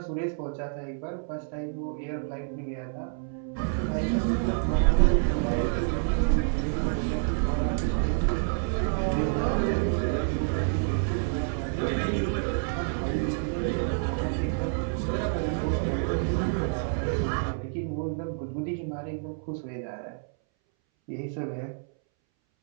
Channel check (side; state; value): left; silent; 59 dB below the other